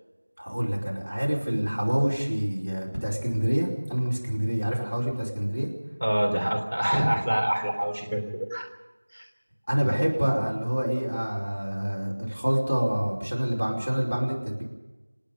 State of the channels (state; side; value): inverted; both; correlation -1.00